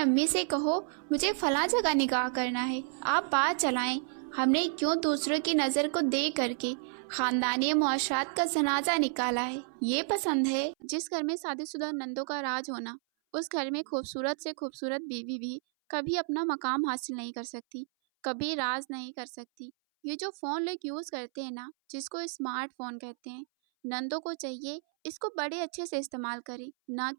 से कहो मुझे फला जगह निकाह करना है, आप बात चलाएं। हमने क्यों दूसरों की नज़र को देख करके खानदानी मुआशरात का जनाजा निकाला है। ये पसंद है। जिस घर में शादीशुदा नंदों का राज होना, उस घर में खूबसूरत से खूबसूरत बीवी भी कभी अपना मकाम हासिल नहीं कर सकती, कभी राज नहीं कर सकती। ये जो फ़ोन लोग यूज़ करते हैं ना, जिसको स्मार्टफोन कहते हैं, नंदों को चाहिए इसको बड़े अच्छे से इस्तेमाल करें, ना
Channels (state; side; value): silent; left; 57 dB below the other